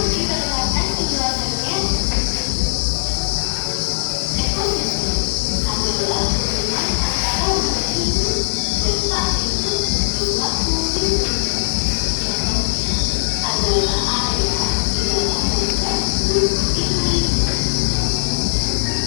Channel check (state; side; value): silent; right; digital silence